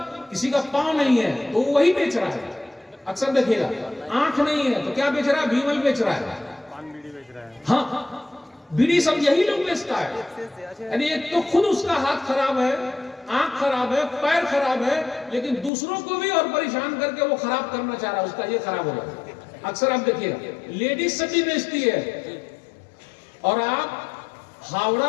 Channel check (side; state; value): right; drops out; at 15.7 s